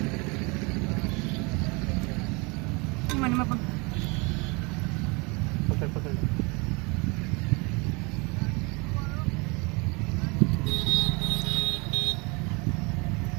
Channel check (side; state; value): left; quieter; 28.5 dB